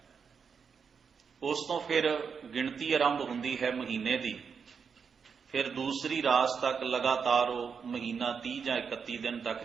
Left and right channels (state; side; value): quieter; left; 6.2 dB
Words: ਉਸ ਤੋਂ ਫਿਰ ਗਿਣਤੀ ਆਰੰਭ ਹੁੰਦੀ ਹੈ ਮਹੀਨੇ ਦੀ। ਫਿਰ ਦੂਸਰੀ ਰਾਸ ਤੱਕ ਲਗਾਤਾਰ ਉਹ ਮਹੀਨਾ 30 ਜਾਂ 31 ਦਿਨ ਤੱਕ